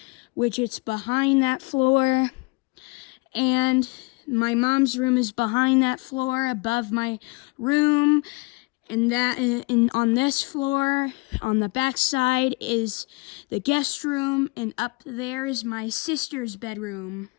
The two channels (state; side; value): quieter; right; 27.5 dB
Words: which it's behind that floor. And my mom's room is behind that floor, above my room. And on this floor, on the back side, is the guest room. And up there is my sister's bedroom.